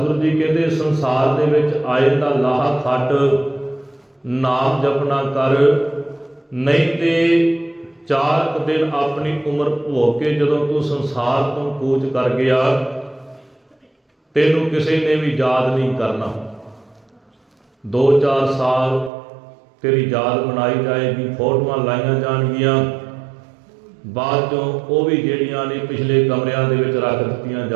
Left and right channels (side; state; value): left; drops out; at 19.1 s